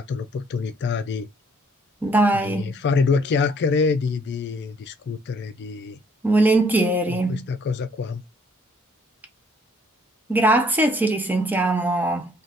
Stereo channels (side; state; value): both; normal; correlation 0.63